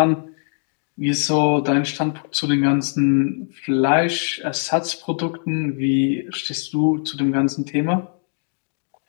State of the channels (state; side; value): silent; right; 64 dB below the other